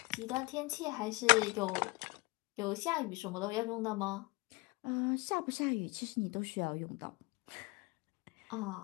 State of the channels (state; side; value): quieter; right; 25.8 dB